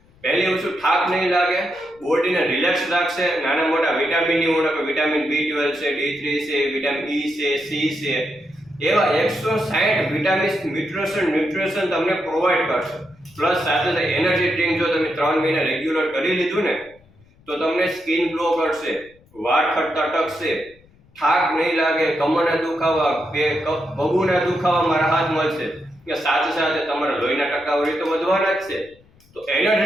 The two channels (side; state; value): left; noise; rumble, 30 dB below the sound